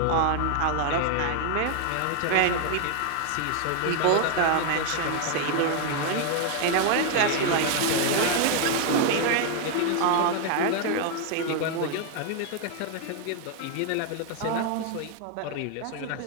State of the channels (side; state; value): both; different; correlation 0.01